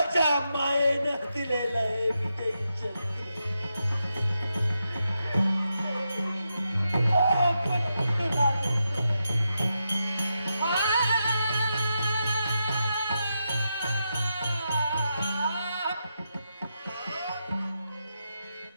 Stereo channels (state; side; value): inverted; both; correlation -0.86